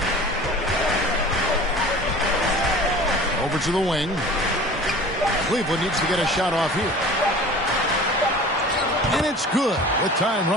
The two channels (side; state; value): both; normal; correlation 0.41